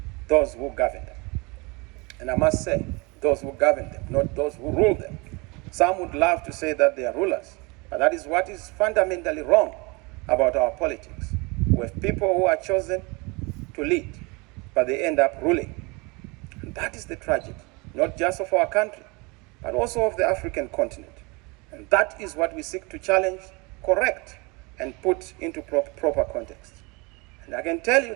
those who govern them. And I must say, those who govern them, not those who rule them. Some would love to say that they are rulers, but that is what is fundamentally wrong about our politics. We have people who are chosen to lead, but they end up ruling. And that is the tragedy, not just of our country, but also of the African continent. And that is what we seek to challenge, correct, and put into proper context. And I can tell you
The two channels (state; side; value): quieter; left; 27.5 dB